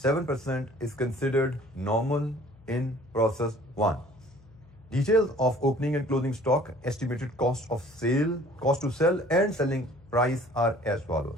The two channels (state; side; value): noise; left; hum, 25 dB below the sound